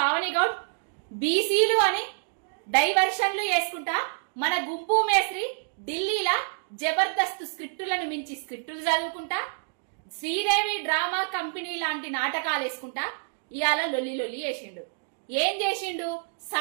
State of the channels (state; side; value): silent; left; digital silence